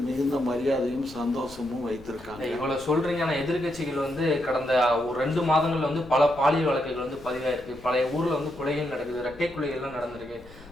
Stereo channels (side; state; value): left; noise; rumble, 22 dB below the sound